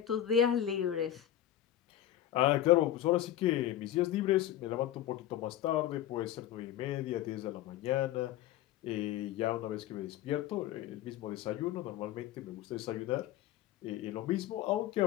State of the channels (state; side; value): quieter; right; 12.3 dB